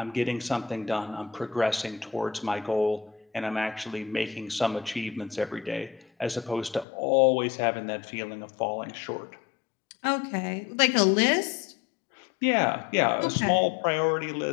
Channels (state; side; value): drops out; right; at 6.9 s